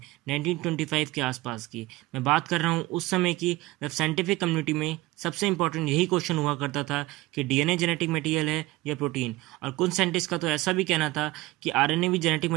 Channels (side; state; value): left; quieter; 19.3 dB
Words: 1925 के आसपास की। मैं बात कर रहा हूँ उस समय की, जब साइंटिफिक कम्युनिटी में सबसे इंपॉर्टेंट यही क्वेश्चन हुआ करता था कि डीएनए जेनेटिक मटेरियल है या प्रोटीन। और कुछ साइंटिस्ट का तो ऐसा भी कहना था कि आरएनए भी जेनेटिक